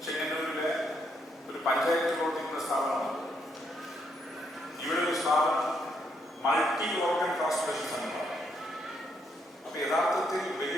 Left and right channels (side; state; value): both; normal; correlation 0.75